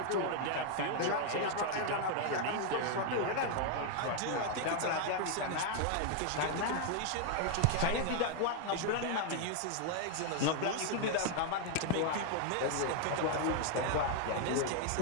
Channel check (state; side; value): different; both; correlation 0.00